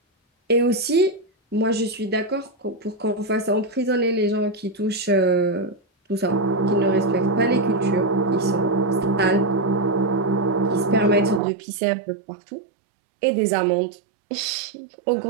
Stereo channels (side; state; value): left; drops out; at 11.4 s